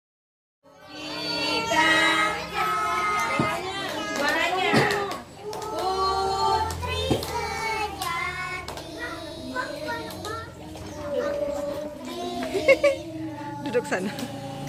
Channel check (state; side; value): identical; both; correlation 1.00